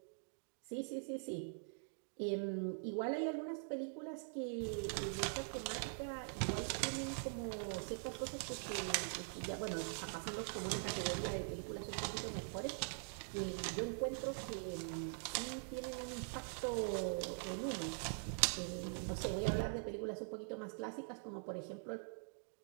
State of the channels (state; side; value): silent; left; digital silence